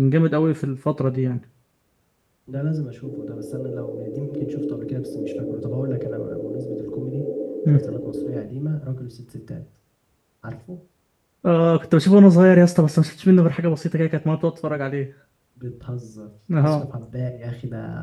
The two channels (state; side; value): identical; both; correlation 1.00